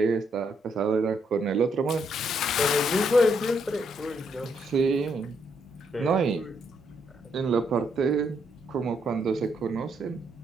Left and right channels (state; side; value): normal; both; correlation 0.75